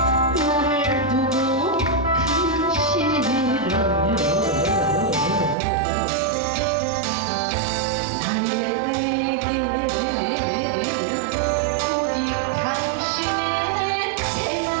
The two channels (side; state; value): left; drops out; at 5.6 s